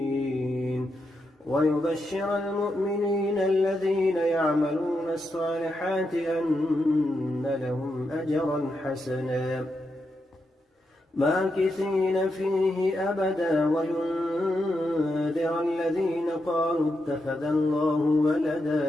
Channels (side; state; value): both; normal; correlation 0.84